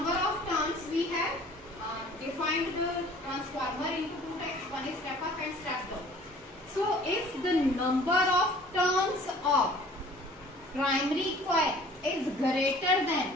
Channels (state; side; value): normal; both; correlation 0.51